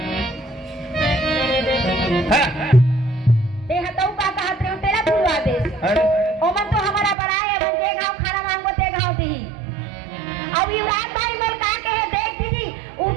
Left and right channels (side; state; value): left; drops out; at 7.2 s